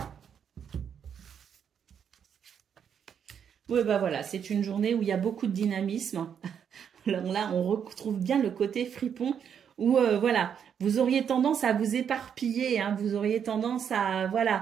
Oui, bah voilà, c'est une journée où il y a beaucoup de dynamisme. Alors là, on retrouve bien le côté fripon où, voilà, vous auriez tendance à vous éparpiller, hein, vous auriez tendance à,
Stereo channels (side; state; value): left; quieter; 8.0 dB